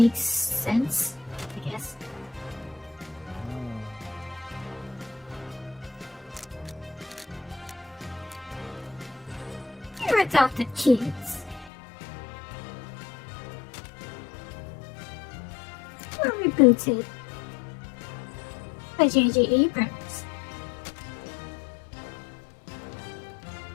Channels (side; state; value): right; drops out; at 11.7 s